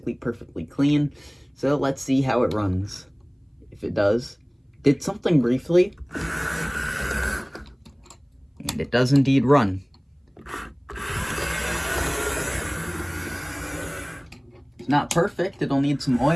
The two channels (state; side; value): identical; both; correlation 1.00